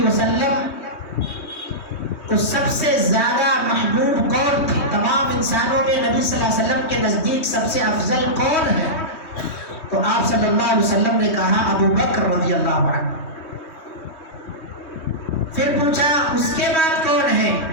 وسلم کو سب سے زیادہ محبوب کون تھے؟ تمام انسانوں میں نبی صلی اللہ علیہ وسلم کے نزدیک سب سے افضل کون ہے؟ تو آپ صلی اللہ علیہ وسلم نے کہا ابو بکر رضی اللہ عنہ۔ پھر پوچھا اس کے بعد کون ہے؟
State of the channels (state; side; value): late; right; 3.2 ms